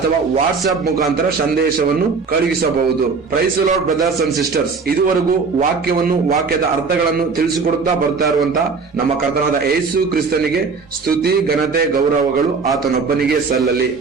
ವಾಟ್ಸ್ಆಪ್ ಮುಖಾಂತರ ಸಂದೇಶವನ್ನು ಕಳುಹಿಸಬಹುದು. Praise the lord brothers and sisters. ಇದುವರೆಗೂ ವಾಕ್ಯದ ಅರ್ಥಗಳನ್ನು ತಿಳಿಸಿಕೊಡುತ್ತಾ ಬರ್ತಾ ಇರುವಂತಹ ನಮ್ಮ ಕರ್ತನಾದ ಯೇಸು ಕ್ರಿಸ್ತನಿಗೆ ಸ್ತುತಿ ಘನತೆ ಗೌರವಗಳು ಆತನೊಬ್ಬನಿಗೆ ಸಲ್ಲಲಿ.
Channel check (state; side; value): quieter; left; 4.8 dB